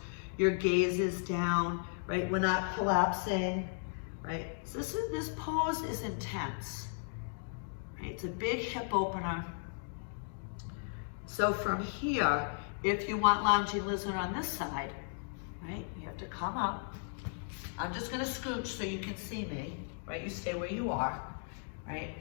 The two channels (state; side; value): silent; right; digital silence